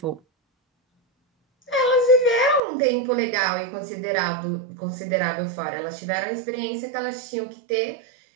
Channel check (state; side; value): drops out; left; at 2.6 s